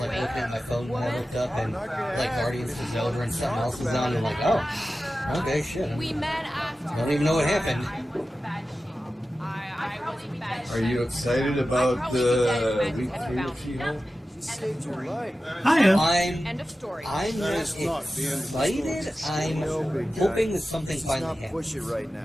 looking at my phone when I looked up and like Guardians was over and something else was on. And I'm like, oh, okay, shit. I don't even know what happened. Are you excited about week 3 of She-Hulk? I am. I'm not excited. I'm hoping that something finally happens. Push it right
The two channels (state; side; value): normal; both; correlation 0.94